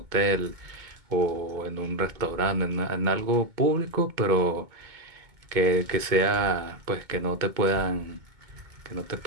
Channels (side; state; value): left; late; 2.2 ms